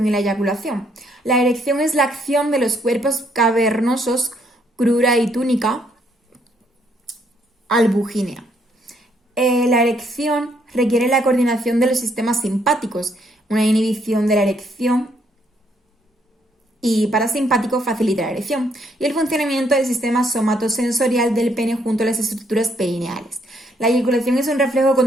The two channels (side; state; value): both; normal; correlation 0.71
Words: y la eyaculación. La erección es la acción de los cuerpos cavernosos, crura y túnica albugínea. La erección requiere la coordinación de los sistemas simpáticos, una inhibición de la erección y parasimpático facilita la erección, y el funcionamiento del sistema somatosensorial del pene junto a las estructuras perineales. La eyaculación es un reflejo